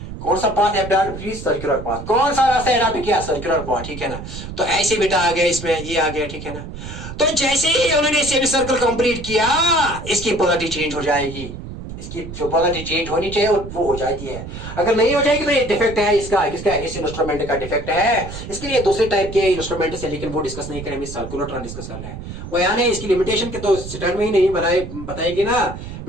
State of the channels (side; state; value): right; noise; rumble, 10 dB below the sound